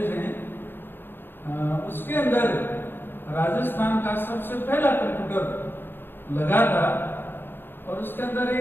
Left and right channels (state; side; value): late; right; 0.10 ms